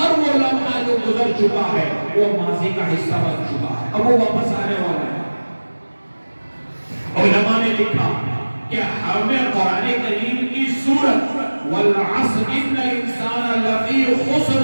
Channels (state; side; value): inverted; both; correlation -1.00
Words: وہ لمحہ جو گزر چکا ہے وہ ماضی کا حصہ بن چکا ہے, اب وہ واپس آنے والا ہے. علماء نے لکھا کہ ہمیں قرآن کریم کی سورت والعصر ان الانسان لفی